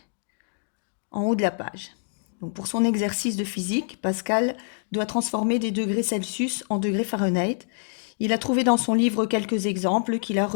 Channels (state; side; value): silent; right; digital silence